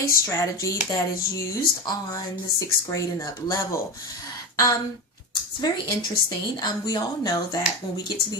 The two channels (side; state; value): both; normal; correlation 0.21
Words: strategy that is used on the 6th grade and up level. It's very interesting. We all know that when we get to